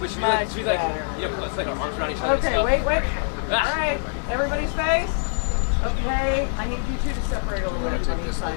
she's like, yeah, let's like our arms around each other. Okay, wait. All right, everybody's face. Okay, I need you two to separate a little bit on each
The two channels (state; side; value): silent; right; 63 dB below the other